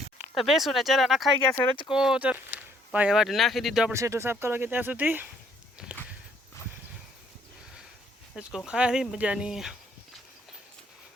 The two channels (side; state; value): both; normal; correlation 0.65